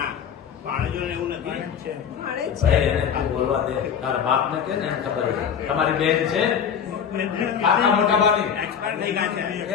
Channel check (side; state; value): right; quieter; 7.8 dB